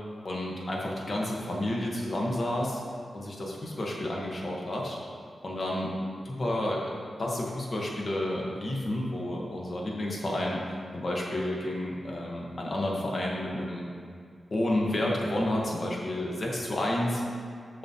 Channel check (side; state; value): both; normal; correlation 0.91